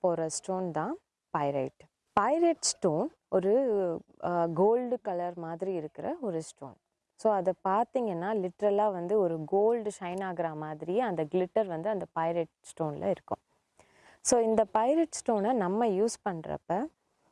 போகிற ஸ்டோன் தான் பைரைட். பைரைட் ஸ்டோன் ஒரு கோல்டு கலர் மாதிரி இருக்கிற ஒரு ஸ்டோன். ஸோ அதை பார்த்தீங்கன்னா லிட்ரலாக ஒரு கோல்டு ஷைன் ஆகிற மாதிரியே அந்த கிளிட்டர் அந்த பைரைட் ஸ்டோனில் இருக்கும். ஸோ இந்த பைரைட் ஸ்டோனை நம்ம யூஸ் பண்ணுறப்ப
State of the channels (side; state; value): both; identical; correlation 1.00